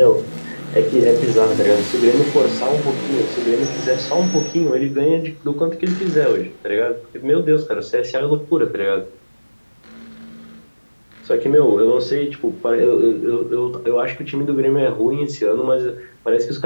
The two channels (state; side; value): inverted; both; correlation -1.00